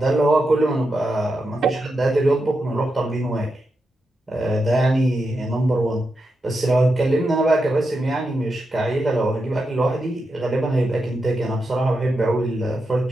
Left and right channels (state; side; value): normal; both; correlation 0.87